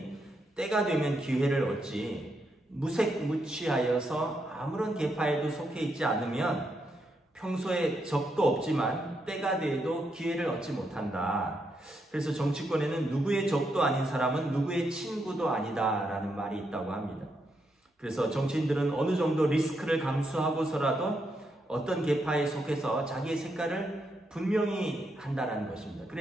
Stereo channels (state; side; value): normal; both; correlation 0.80